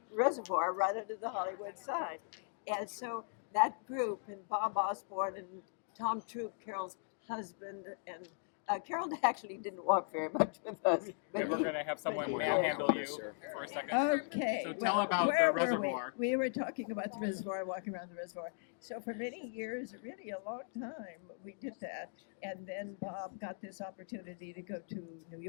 reservoir right under the Hollywood sign. And so that group, and Bob Osborne and Tom Troop, Carol's husband, and Carol actually didn't walk very much with us. And we're going to have someone manhandle you for a second. Okay. So tell about the reservoir. We were talking about the reservoir, walking around the reservoir. So for many years, really a long time, we did that. And then Bob got this opportunity to go to New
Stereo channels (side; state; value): right; silent; digital silence